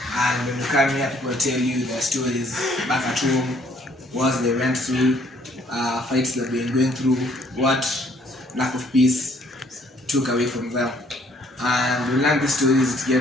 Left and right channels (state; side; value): normal; both; correlation 0.63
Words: And when you come here, people tell you their stories back at home, what they went through, fights that they've been going through, what lack of peace took away from them. And when you learn these stories,